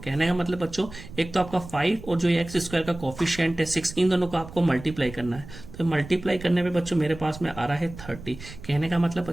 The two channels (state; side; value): noise; right; rumble, 15 dB below the sound